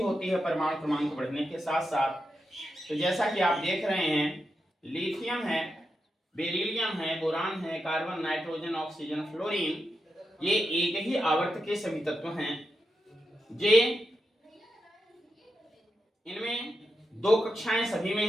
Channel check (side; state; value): both; normal; correlation 0.87